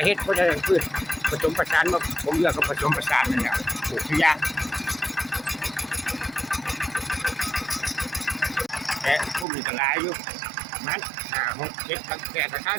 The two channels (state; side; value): drops out; left; at 9.5 s